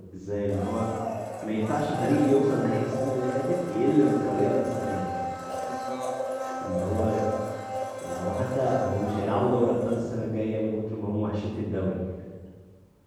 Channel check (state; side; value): identical; both; correlation 1.00